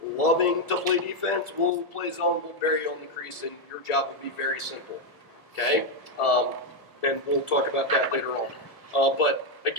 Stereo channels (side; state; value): right; late; 1.4 ms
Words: loving to play defense, we'll play zone, we'll bury you on the crease, and your job will be very simple, okay? And we'll talk about that later on. But